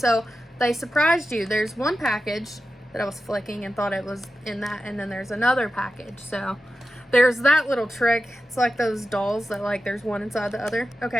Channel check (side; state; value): both; normal; correlation 0.92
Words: they surprised you. There's 1 package that I was flicking and thought it was in that, and then there's another package. So there's that little trick. It's like those dolls that like there's one inside the other.